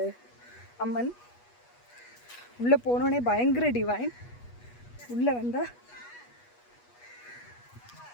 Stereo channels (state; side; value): late; right; 8.3 ms